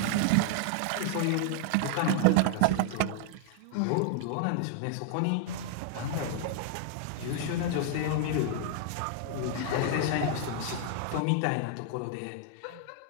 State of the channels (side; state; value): both; different; correlation 0.00